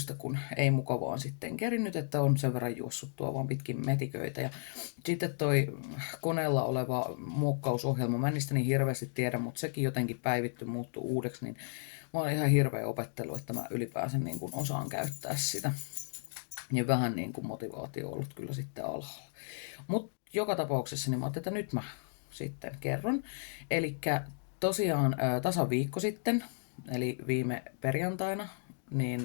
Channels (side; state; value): right; silent; digital silence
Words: kun ei mukavaan sitten kerinnyt, että on sen verran juossut tuo vaan pitkin metiköitä. Ja sitten toi koneella oleva muokkausohjelma, mä en niistä niin hirveästi tiedä, mutta sekin jotenkin päivitty muuttuu uudeksi, niin mä oon ihan hirveä opettelu, että mä ylipäänsä niin kuin osaan käyttää sitä. Niin vähän niin kuin motivaatio on ollut kyllä sitten alhaalla. Mutta joka tapauksessa niin mä ajattelin, että nyt mä sitten kerron. Eli tosiaan tasan viikko sitten, eli viime perjantaina,